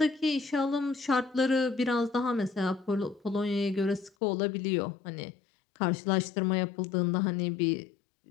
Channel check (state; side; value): drops out; right; at 4.1 s